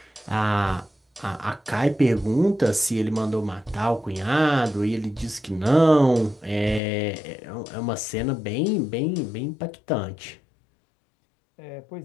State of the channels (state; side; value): drops out; right; at 6.8 s